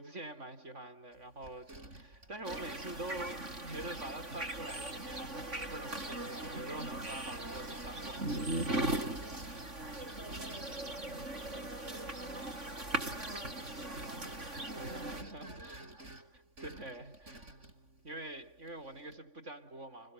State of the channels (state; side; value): late; left; 3.5 ms